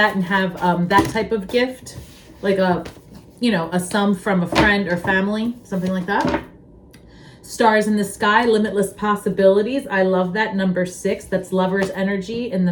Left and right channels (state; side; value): identical; both; correlation 1.00